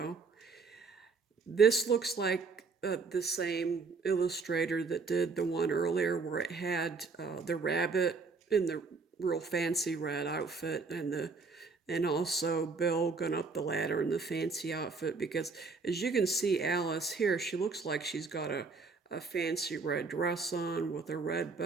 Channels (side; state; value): left; quieter; 4.4 dB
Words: This looks like the same illustrator that did the one earlier where it had the rabbit in the real fancy red outfit and also Bill going up the ladder in the fancy outfit, because as you can see Alice here, she looks like she's got a fancy red dress on with a red